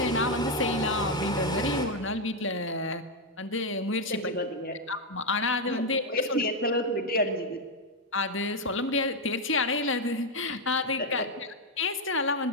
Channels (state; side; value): normal; both; correlation 0.02